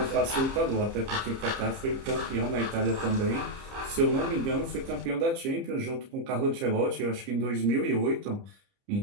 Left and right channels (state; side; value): late; left; 30 ms